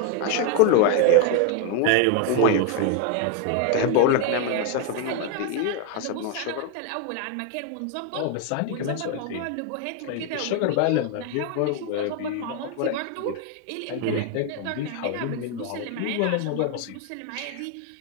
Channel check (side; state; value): both; different; correlation 0.01